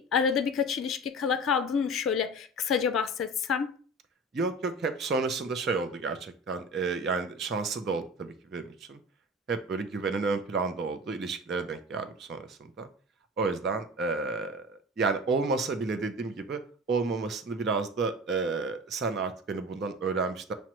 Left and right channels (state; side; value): normal; both; correlation 0.35